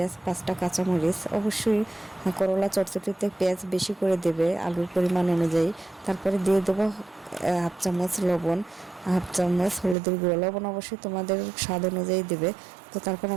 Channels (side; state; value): left; drops out; at 10.0 s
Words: 5টা কাঁচামরিচ। অবশ্যই করলা চটচটিতে পেঁয়াজ বেশি করে দেবে আলুর পরিমাণ অনুযায়ী। তারপরে দিয়ে দেবো হাফ চামচ লবণ, হাফ চামচ হলুদের গুঁড়ো। লবণ অবশ্যই তোমাদের স্বাদ অনুযায়ী দেবে। তো তারপর